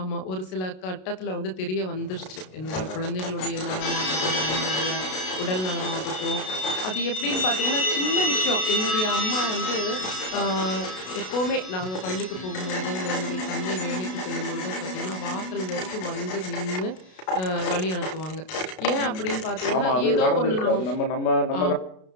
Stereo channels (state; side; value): late; right; 32 ms